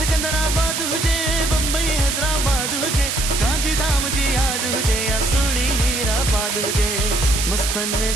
सिकंदराबाद हुजे, बम्बई हैदराबाद हुजे, गांधीधाम जी याद हुजे या सुड़ी हीराबाद हुजे। मस्तन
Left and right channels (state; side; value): noise; right; hiss, 2 dB below the sound